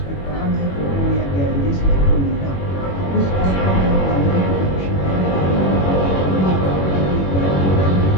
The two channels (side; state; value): right; late; 21 ms